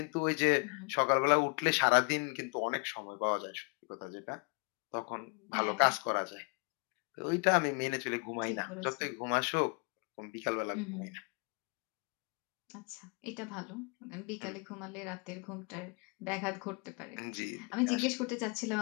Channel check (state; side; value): quieter; right; 33.3 dB